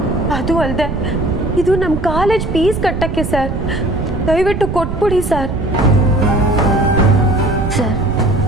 ಅದು ಅಲ್ಲದೆ ಇದು ನಮ್ಮ ಕಾಲೇಜ್ ಫೀಸ್ ಕಟ್ಟಕ್ಕೆ ಸರ್. ದಯವಿಟ್ಟು ಕೊಟ್ಬಿಡಿ ಸರ್. ಸರ್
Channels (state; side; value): noise; right; rumble, 5 dB below the sound